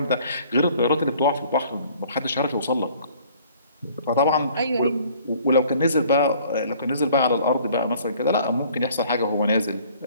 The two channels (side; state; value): both; inverted; correlation -0.55